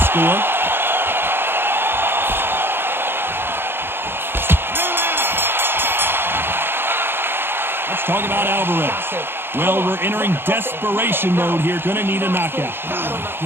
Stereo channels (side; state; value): left; late; 0.11 ms